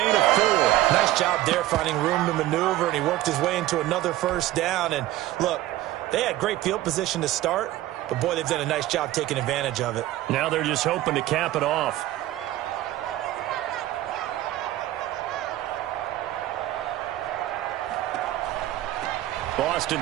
of 4. Nice job there finding room to maneuver, and he worked his way into another first down. And look, they had great field position to start, but boy, they've done a nice job taking advantage of it. Now they're just hoping to cap it off.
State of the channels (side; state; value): left; quieter; 15.1 dB